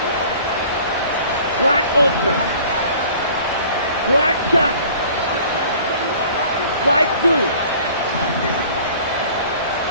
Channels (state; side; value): inverted; both; correlation -0.49